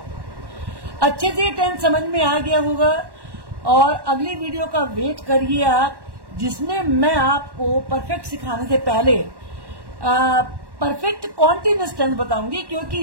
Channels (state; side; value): late; left; 1.1 ms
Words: अच्छे से टेंस समझ में आ गया होगा, और अगली वीडियो का वेट करिए आप, जिसमें मैं आपको परफेक्ट सिखाने से पहले परफेक्ट कॉन्टिन्यूअस टेंस बताऊंगी, क्योंकि